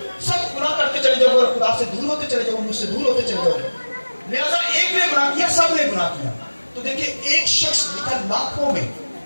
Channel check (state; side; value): inverted; both; correlation -1.00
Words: سب گناہ کرتے چلے جاؤ گے، خدا سے دور ہوتے چلے جاؤ گے، مجھ سے دور ہوتے چلے جاؤ گے، لہذا ایک نے گناہ کیا سب نے گناہ کیا۔ تو دیکھیں ایک شخص لکھا لاکھوں میں،